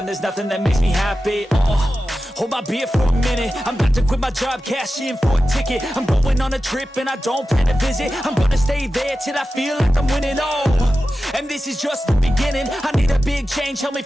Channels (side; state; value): both; normal; correlation 0.93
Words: there's nothing that makes me happy. Hold my beer for a minute, I'm about to quit my job, cash in for a ticket. I'm going on a trip and I don't plan to visit. I'm gonna stay there till I feel like I'm winning, and this is just the beginning. I need a big change, help me